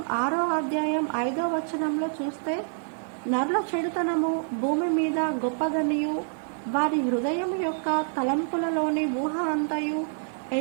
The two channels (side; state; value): left; silent; digital silence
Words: 6వ అధ్యాయం 5వ వచనంలో చూస్తే, నరుల చెడుతనము భూమి మీద గొప్పదనియు, వారి హృదయం యొక్క తలంపులలోని ఊహ అంతయు